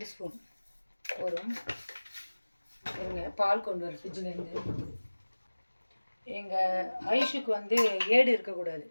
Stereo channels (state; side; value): inverted; both; correlation -1.00